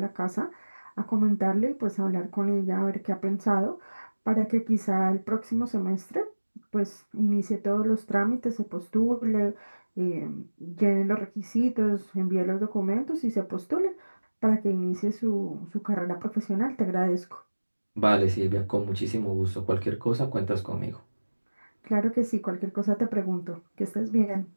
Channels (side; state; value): both; inverted; correlation -1.00